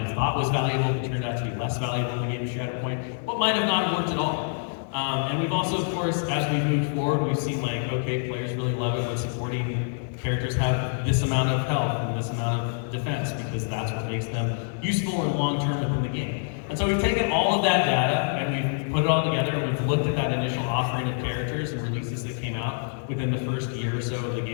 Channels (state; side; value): silent; right; digital silence